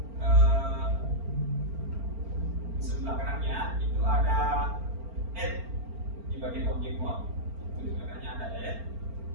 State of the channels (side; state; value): left; late; 4.4 ms